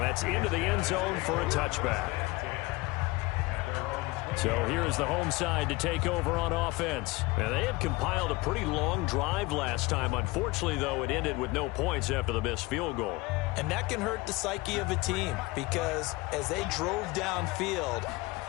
That's into the end zone for a touchback. So here is the home side to take over on offense. And they had compiled a pretty long drive last time. Unfortunately, though, it ended with no points after the missed field goal. And that can hurt the psyche of a team because as they drove downfield,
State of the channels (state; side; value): quieter; right; 22.3 dB